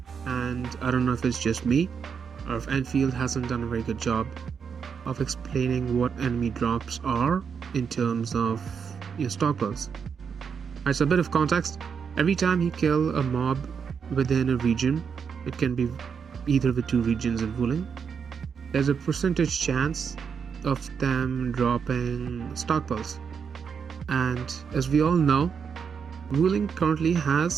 And I don't know if it's just me or if Enfield hasn't done a very good job of explaining what enemy drops are in terms of your stockpiles. Alright, so a bit of context. Every time you kill a mob within a region, it can be either of the two regions in ruling, there's a percentage chance of them dropping stockpiles. And as we all know, ruling currently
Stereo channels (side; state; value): left; quieter; 6.5 dB